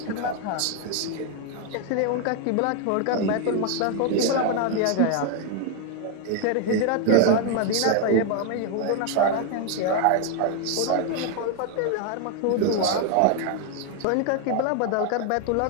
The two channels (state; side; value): different; both; correlation 0.01